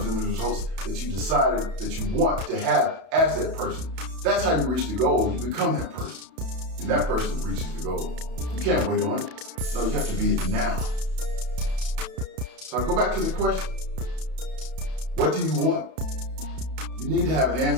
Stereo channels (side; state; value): left; late; 31 ms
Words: and the results that you decided that you want to have as that person. That's how you reach the goal. You become that person, and that person reaches the goal. You can't wait on it. No, you have to be it now. So I go back to the question. What do you want? You need to have an